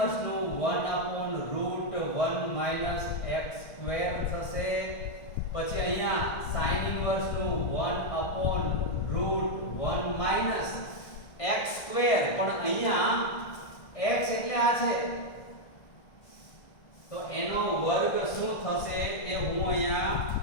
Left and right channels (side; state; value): right; late; 1.6 ms